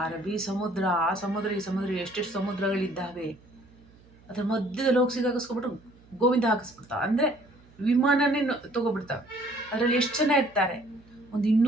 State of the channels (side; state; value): right; noise; hum, 27 dB below the sound